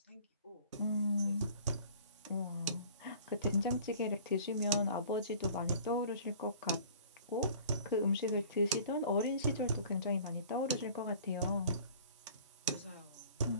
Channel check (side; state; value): both; inverted; correlation -0.48